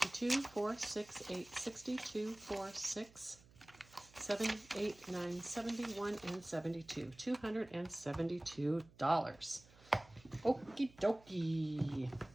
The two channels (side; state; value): right; noise; hum, 25 dB below the sound